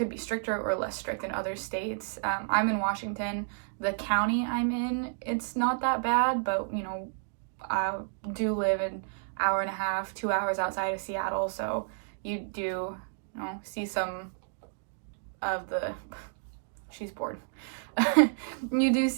be stricter or less strict in other states. I'm in Washington. The county I'm in, it's not that bad, but, I do live an hour and a half, 2 hours outside of Seattle, so you do, see some of the, she's bored. You do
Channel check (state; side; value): silent; left; digital silence